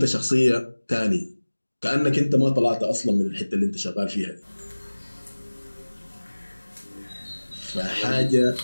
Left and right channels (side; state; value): both; inverted; correlation -1.00